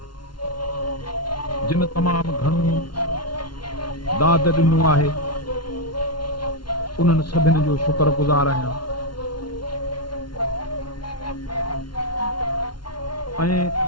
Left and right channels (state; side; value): late; right; 0.71 ms